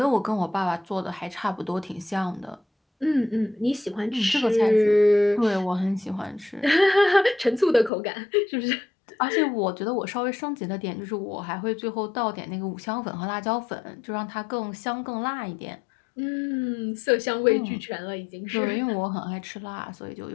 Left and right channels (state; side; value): drops out; right; at 7.9 s